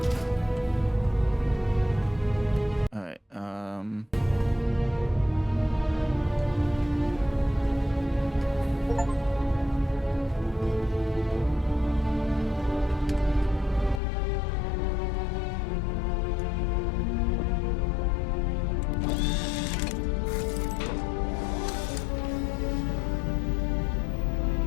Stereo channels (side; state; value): right; drops out; at 14.0 s